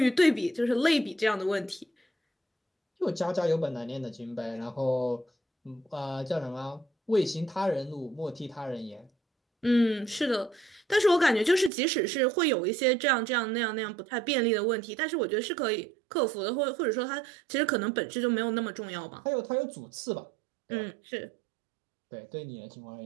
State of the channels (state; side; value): drops out; left; at 11.7 s